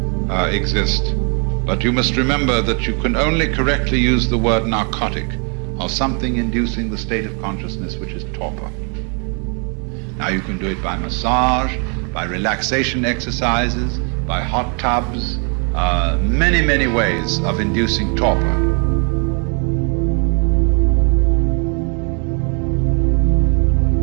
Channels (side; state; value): left; quieter; 37.6 dB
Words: exist. But you must remember that you can only correctly use the word narcotic of something inducing the state of consciousness which is torpor. Now you can do it by massage, by relaxation exercises, by hot tubs, many, many ways of inducing torpor.